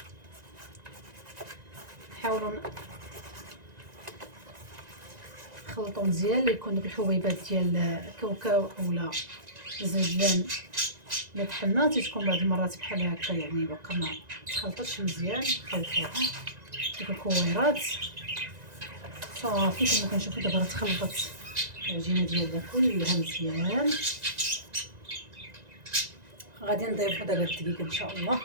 نحاولوا نخلطوا مزيان ليكون دوك الحبيبات ديال الكاوكاو اولا الزنجلان اللي طحنا تكون بعض المرات بحال هكا، يعني باقا ما تخلطش مزيان. خلطوها ديك الكويرات صافي كما كنشوفوا دابا راه تخلطت العجينه ديالنا كلها مزيان. غادي نضيفوا دابا الدقيق ان شاء الله.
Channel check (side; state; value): left; late; 1.9 ms